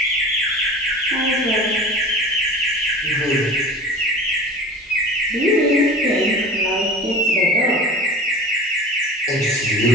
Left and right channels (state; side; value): normal; both; correlation 0.38